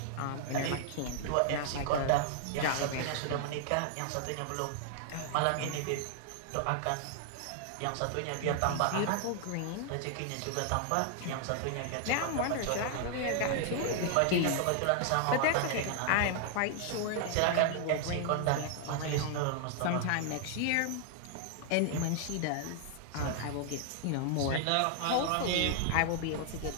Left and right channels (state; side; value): different; both; correlation 0.00